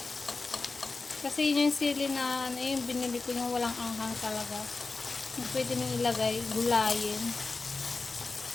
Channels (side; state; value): right; quieter; 3.9 dB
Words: Kasi yun yung sili na ano yung binili ko yung walang anghang talaga. Pwede nyo ilagay, gulayin.